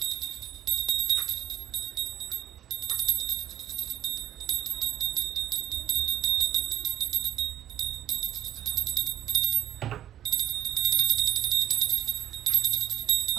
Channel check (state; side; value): quieter; left; 11.7 dB